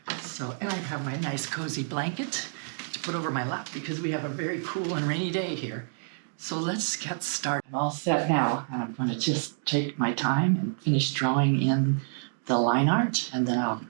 So, and I have my nice cozy blanket to put over my lap because we have a very cool and rainy day here. So let's get started. I'm all set now, and I'm going to just take my time and finish drawing in the line art, and then I'll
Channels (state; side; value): silent; left; digital silence